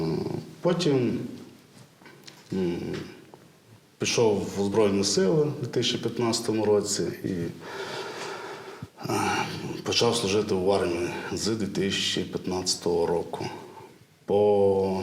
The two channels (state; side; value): identical; both; correlation 1.00